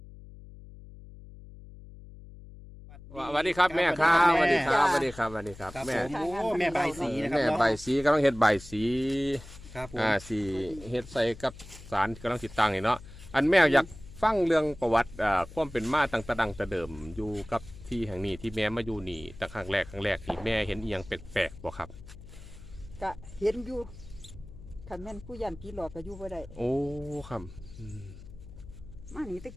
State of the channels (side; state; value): left; noise; hum, 17 dB below the sound